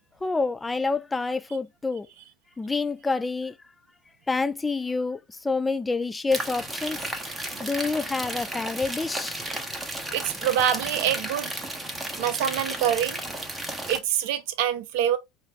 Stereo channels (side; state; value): both; normal; correlation 0.49